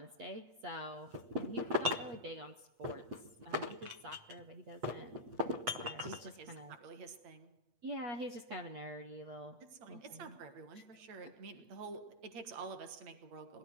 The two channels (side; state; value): left; late; 8.5 ms